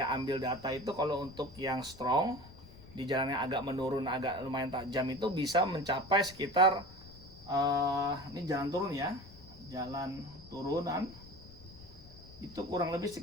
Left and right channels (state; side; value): noise; left; rumble, 19 dB below the sound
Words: ambil data itu kalau untuk yang strong di jalan yang agak menurun, agak lumayan tajam itu bisa mencapai sekitar ini jalan turun ya, jalan turunan itu kurang lebih